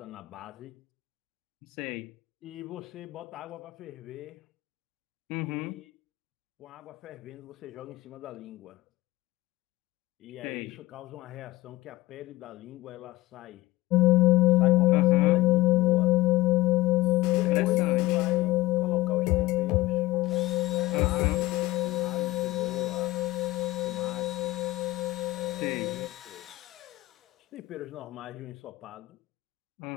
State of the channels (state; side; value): quieter; right; 19.1 dB